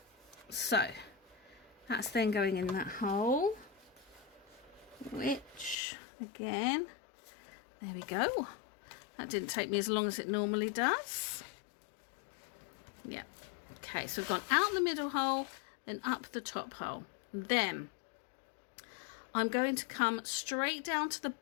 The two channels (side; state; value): right; drops out; at 5.8 s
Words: So that's then going in that hole, which again, there we go. That didn't take me as long as it normally does. Yeah. Okay, so we've gone out the middle hole, then up the top hole. Then I'm going to come straight down to the